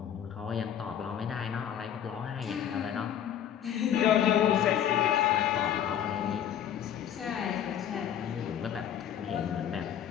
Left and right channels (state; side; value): quieter; right; 9.8 dB